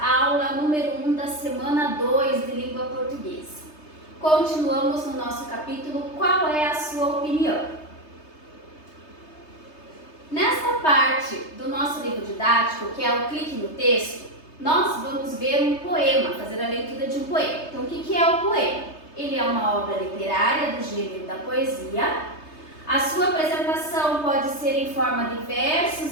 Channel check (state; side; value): late; right; 3.3 ms